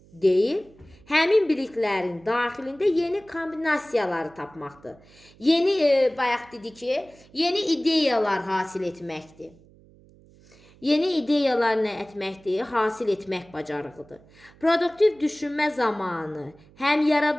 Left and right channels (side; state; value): right; noise; hum, 26 dB below the sound